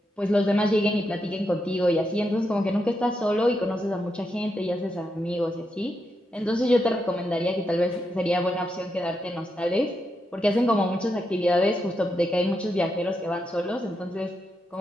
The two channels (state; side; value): normal; both; correlation 0.84